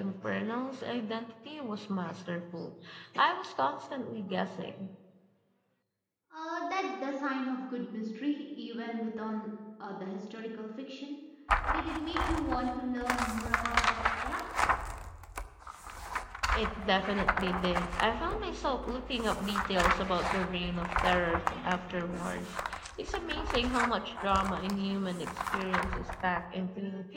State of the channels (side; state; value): both; identical; correlation 1.00